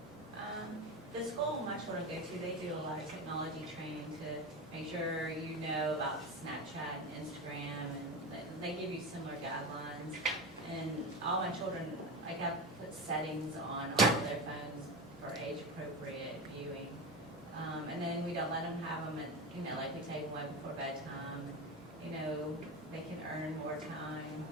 The school my children go to, they do a lot of technology training to make sure you know about Snapchat and Instagram, and they give you similar guidelines. And all my children, I got put settings on all of their phones for age-appropriate viewing. And then we don't let them have them at, like we take them way before bedtime. They can earn more time.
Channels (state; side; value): normal; both; correlation 0.23